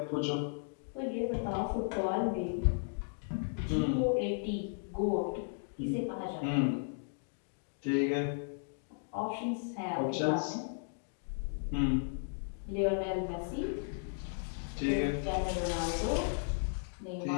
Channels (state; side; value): silent; right; digital silence